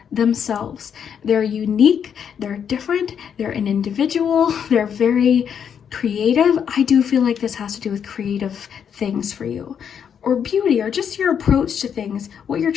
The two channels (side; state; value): right; quieter; 7.9 dB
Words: themselves. They're unique, they're different, they're an individual, they're very creative. I do feel like this has to do with creative things for you, or beauty, or just your approach to things, what you're